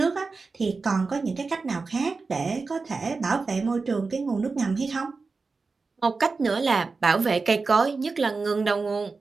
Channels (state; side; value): quieter; left; 4.2 dB